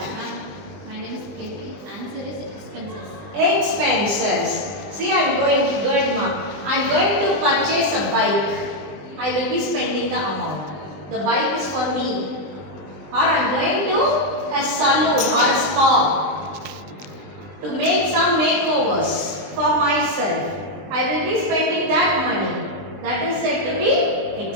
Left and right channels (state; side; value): late; left; 20 ms